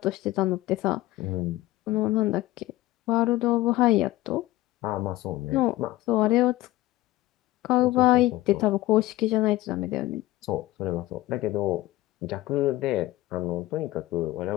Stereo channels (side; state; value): right; quieter; 17.0 dB